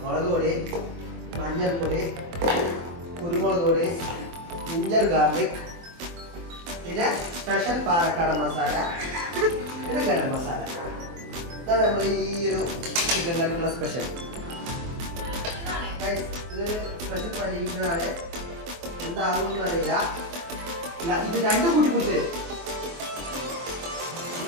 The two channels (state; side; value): late; left; 24 ms